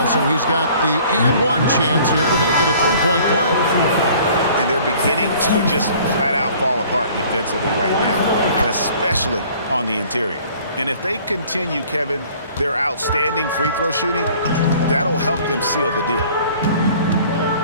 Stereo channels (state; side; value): inverted; both; correlation -0.52